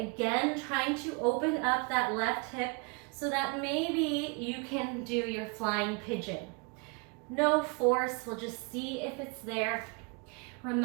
trying to open up that left hip so that maybe you can do your flying pigeon. No force, we'll just see if it's there.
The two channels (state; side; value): quieter; left; 31.1 dB